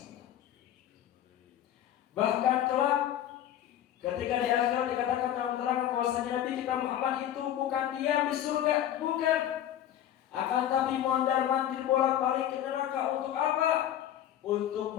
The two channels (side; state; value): right; quieter; 11.4 dB